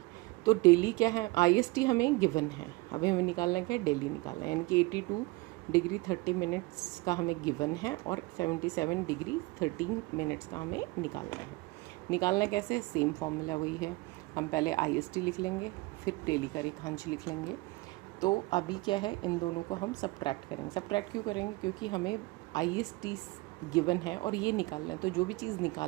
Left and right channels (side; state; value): left; quieter; 22.9 dB